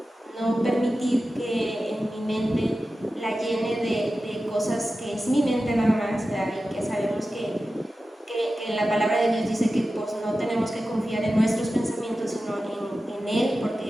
no permitir que en mi mente la llene de cosas que es mi mente nada más, ¿verdad? Y que sabemos que la palabra de Dios dice que pues, no tenemos que confiar en nuestros pensamientos, sino en Él,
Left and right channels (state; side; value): normal; both; correlation 0.94